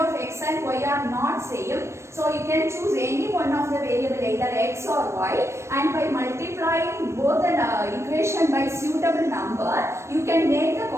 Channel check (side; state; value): left; late; 0.13 ms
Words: x and y are not same. So you can choose any one of the variable, either x or y, and by multiplying both the equation by suitable number, you can make the